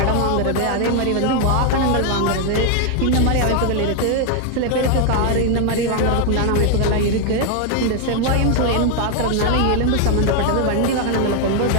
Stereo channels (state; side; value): different; both; correlation 0.00